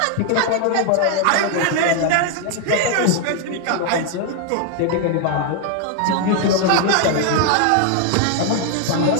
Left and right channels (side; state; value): both; different; correlation 0.00